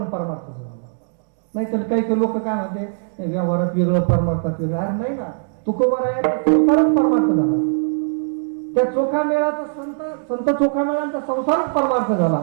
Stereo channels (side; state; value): left; silent; digital silence